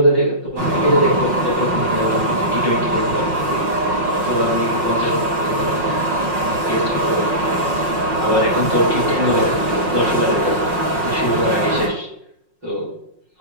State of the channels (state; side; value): late; left; 5.5 ms